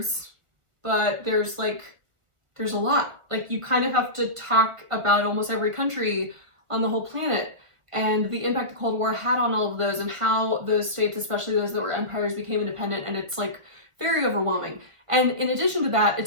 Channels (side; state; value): left; late; 1.4 ms